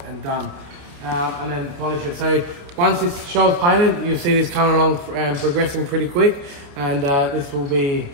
and done. And then polish it. So once this shell's painted, you'll see this coming along and progressing pretty quick, and this will be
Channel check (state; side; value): late; left; 29 ms